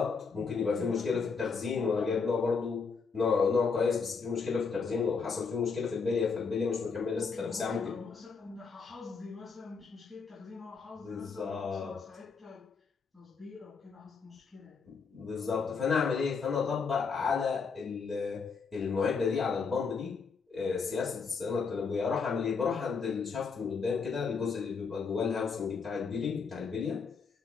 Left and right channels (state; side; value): quieter; right; 5.2 dB